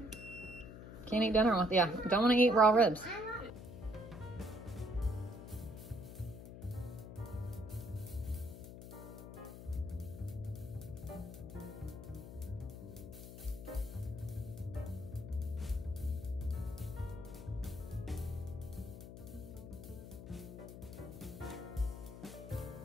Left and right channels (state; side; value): noise; left; hum, 12 dB below the sound